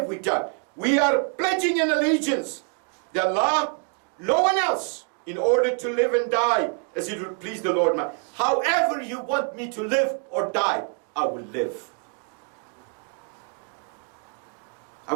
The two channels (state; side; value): quieter; left; 39.4 dB